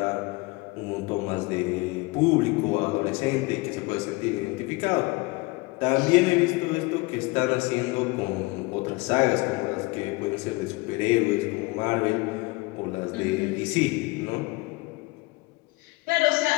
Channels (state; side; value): quieter; right; 24.0 dB